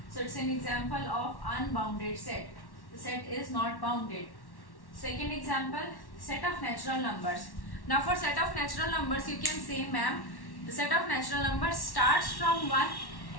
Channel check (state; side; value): late; right; 1.1 ms